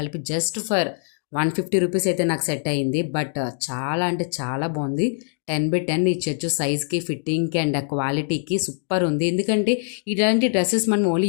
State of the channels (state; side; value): silent; right; digital silence